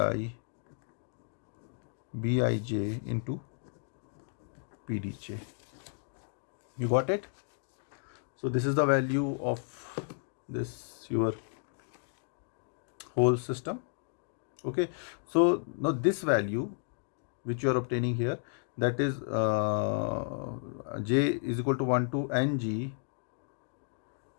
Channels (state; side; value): silent; right; digital silence